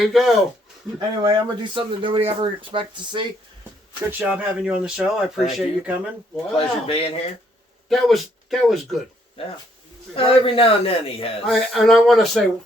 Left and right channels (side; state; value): both; normal; correlation 0.69